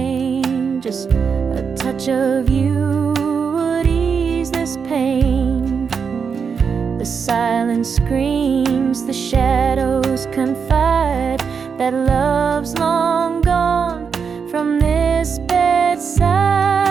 Just a touch of you would ease this pain. The silence screams, the shadows confide that love's long gone from this bedside.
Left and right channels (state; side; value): quieter; left; 6.1 dB